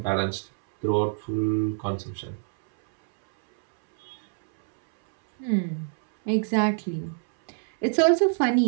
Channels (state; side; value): silent; left; 62 dB below the other